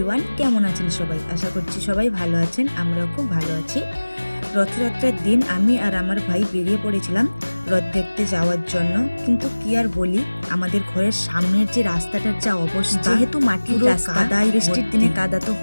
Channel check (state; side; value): inverted; both; correlation -1.00